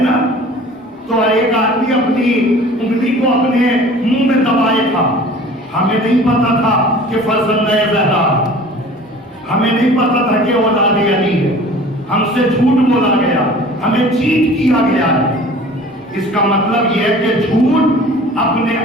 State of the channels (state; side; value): normal; both; correlation 0.45